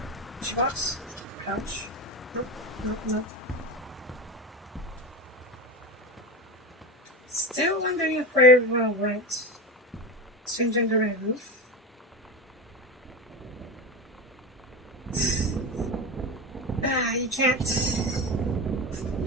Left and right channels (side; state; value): both; normal; correlation 0.23